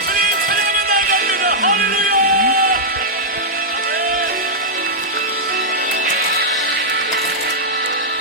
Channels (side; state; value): both; normal; correlation -0.09